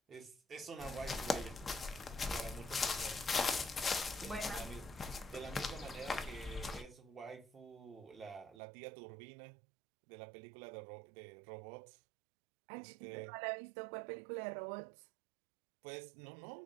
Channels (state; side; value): drops out; left; at 8.6 s